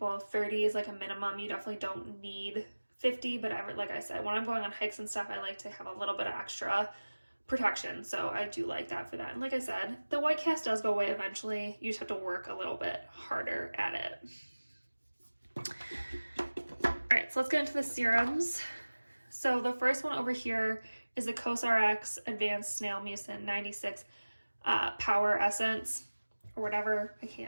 30 is like a minimum. You definitely don't need 50, but like I said, when I'm going on hikes and stuff, I like to have a little bit of extra protection. So I do like that for that. And like I said, the white cast does go away eventually. You just have to work a little bit harder at it. All right, so let's get into the serums. So the first one over here is the COSRX Advanced Snail Mucin 96 Power Essence, or whatever. I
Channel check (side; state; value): both; inverted; correlation -1.00